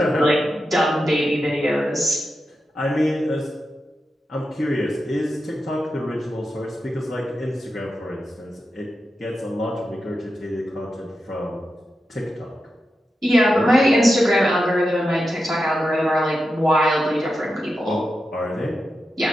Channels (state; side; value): normal; both; correlation 0.89